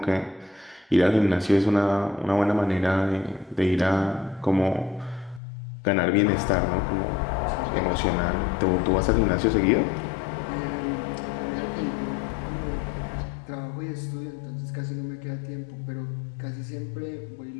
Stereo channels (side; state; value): right; drops out; at 5.4 s